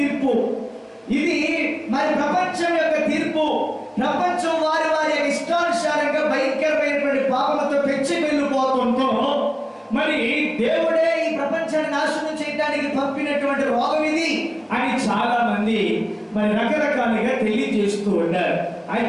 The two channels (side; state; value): both; identical; correlation 1.00